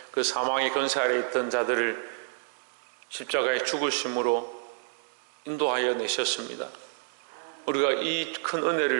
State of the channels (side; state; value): left; silent; digital silence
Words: 그 사망의 권세 아래 있던 자들을 십자가의 죽으심으로 인도하여 내셨습니다. 우리가 이 큰